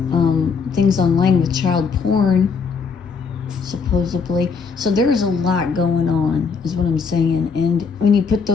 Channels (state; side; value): quieter; right; 5.4 dB